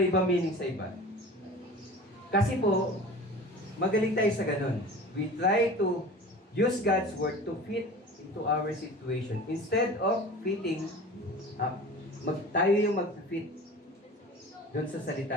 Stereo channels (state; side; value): normal; both; correlation 0.38